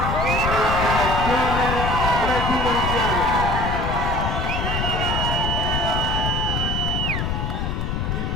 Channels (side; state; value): left; noise; rumble, 1 dB below the sound